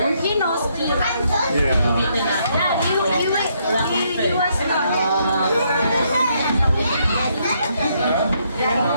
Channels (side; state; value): both; inverted; correlation -0.73